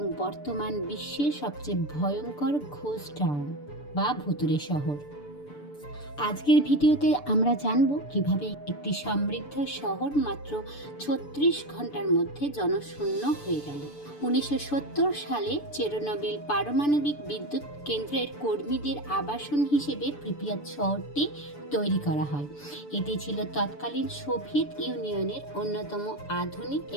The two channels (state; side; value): late; right; 6.9 ms